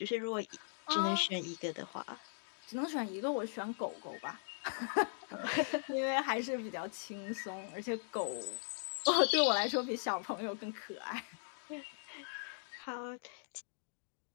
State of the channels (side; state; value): right; silent; digital silence